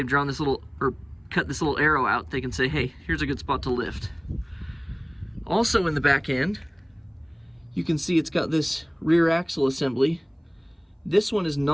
drawn this little, or cut this little arrow out. They can say, hey, here's a good spot to lift. Also in the back end, you can see it's got this rear axle assembly. This one is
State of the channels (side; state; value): both; identical; correlation 1.00